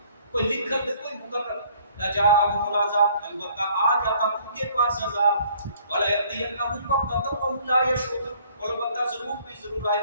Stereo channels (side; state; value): both; inverted; correlation -0.58